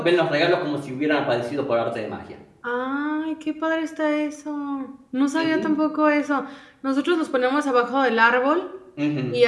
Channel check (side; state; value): both; identical; correlation 1.00